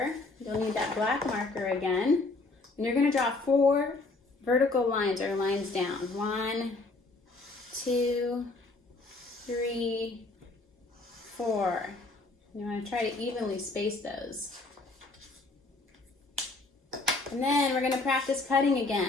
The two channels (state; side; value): quieter; right; 3.3 dB